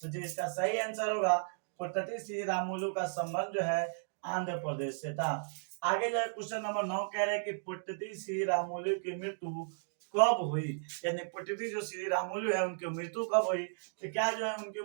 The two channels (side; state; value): left; silent; digital silence